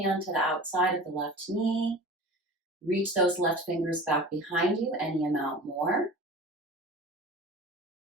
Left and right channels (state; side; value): normal; both; correlation 0.38